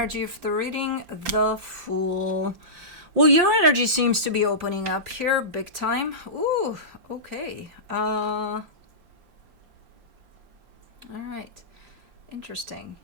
of the reading, the Fool. Well, your energy seems to be opening up here big time. Ooh, okay. All right. Interesting.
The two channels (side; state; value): left; late; 5.7 ms